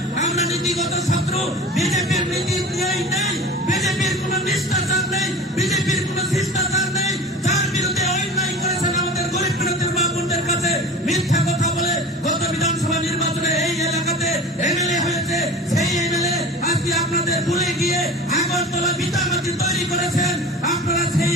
আমরা নীতিগত শত্রু। বিজেপির নীতি নেই, বিজেপির কোন নিষ্ঠাচার নেই, বিজেপির কোন শিষ্টাচার নেই। যার বিরুদ্ধে অন্যায় করেছেন আমাদের গরিব প্রান্তের বাবুদের কাছে মিথ্যা কথা বলে গত বিধানসভা নির্বাচনে এই এলাকাতে এমএলএ হয়েছে, সেই এমএলএ আজকে আপনাদের ভুলে গিয়ে আগরতলা বিটামাটি তৈরি করেছেন। আপনারা সেই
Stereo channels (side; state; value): both; normal; correlation 0.37